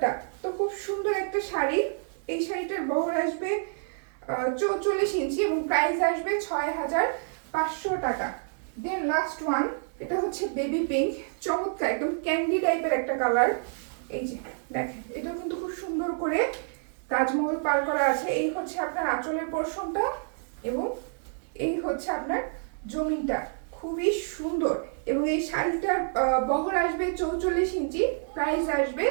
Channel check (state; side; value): silent; left; digital silence